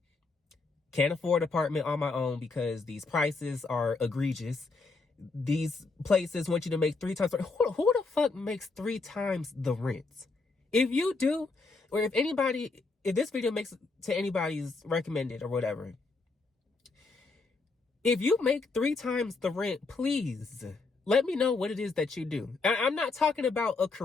Can't afford an apartment on my own because these prices are egregious. These places want you to make 3 times. Who the fuck makes 3 times the rent? If you do, or if this video makes to anybody's recommended or whatever, if you make 3 times the rent, please let me know what it is that you do. I'm not talking about a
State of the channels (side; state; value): right; quieter; 3.9 dB